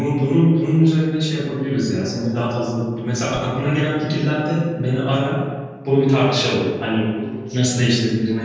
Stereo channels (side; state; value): both; identical; correlation 1.00